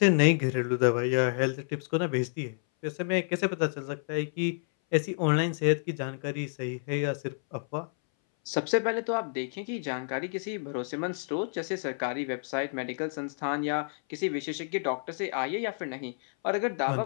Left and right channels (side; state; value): right; silent; 58 dB below the other